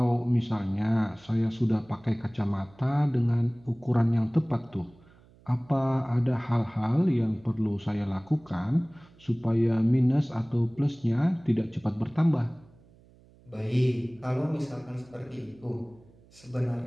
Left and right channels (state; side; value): noise; right; hum, 27 dB below the sound